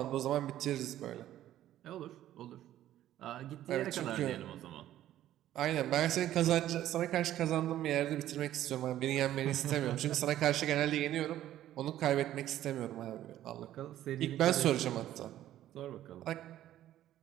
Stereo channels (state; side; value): quieter; left; 12.8 dB